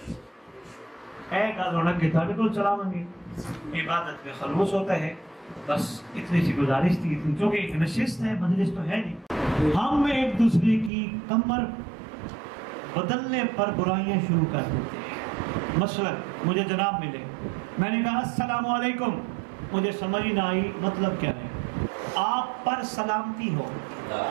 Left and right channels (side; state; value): left; drops out; at 10.9 s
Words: اے گل ہونا کہ تھوڑے کو چلا منگی عبادت میں خلوص ہوتا ہے۔ بس اتنی سی گزارش تھی، کیونکہ ایک نشست ہے، مجلس تو ہے نہیں، ہم ایک دوسرے کی کمر بدلنے پر برائیاں شروع کر دیتے ہیں۔ مثلا مجھے جناب ملے، میں نے کہا السلام علیکم، مجھے سمجھ نہ آئی مطلب کیا ہے، آپ پر سلامتی ہو۔